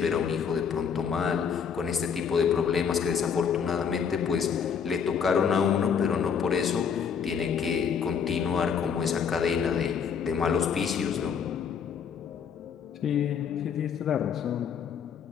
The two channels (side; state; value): right; quieter; 7.0 dB